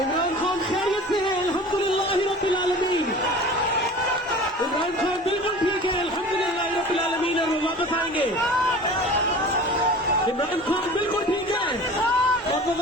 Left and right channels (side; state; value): both; normal; correlation 0.40